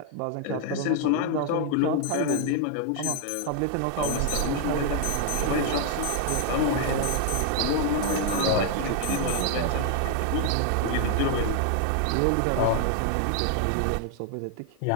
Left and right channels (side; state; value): both; different; correlation 0.00